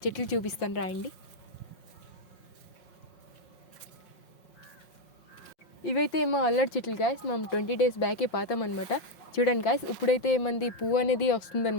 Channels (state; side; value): late; right; 5.5 ms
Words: చెట్లు చూపిస్తాను రాయండి. ఇవైతే మా అల్లడి చెట్లు గాయస్. మేము 20 days బ్యాకే పాతామన్నమాట. చూడండి గాయస్, ఇప్పుడైతే మంది పువ్వు అనేది